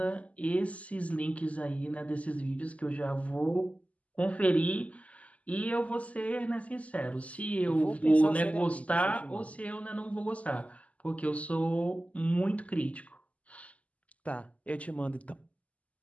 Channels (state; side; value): late; right; 0.069 ms